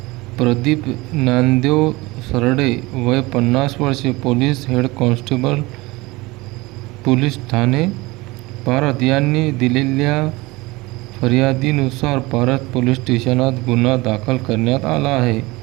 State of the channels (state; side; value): quieter; left; 22.1 dB